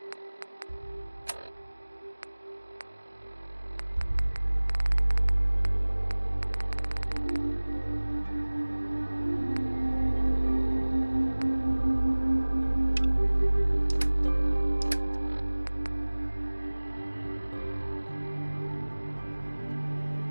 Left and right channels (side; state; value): both; inverted; correlation -1.00